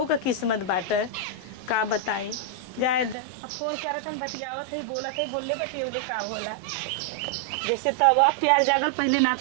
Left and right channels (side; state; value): left; drops out; at 3.2 s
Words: का किस्मत बाटे का बताई जाए द अब फोन करत हन बतियावत है बोलत है बोलले बतियौले का होला जैसे तब अब प्यार जागल पहले ना